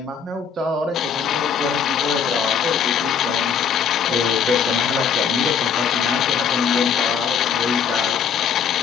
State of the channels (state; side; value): quieter; right; 7.0 dB